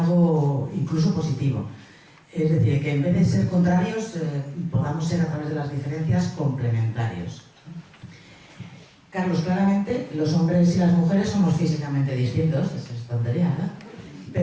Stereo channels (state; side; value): identical; both; correlation 1.00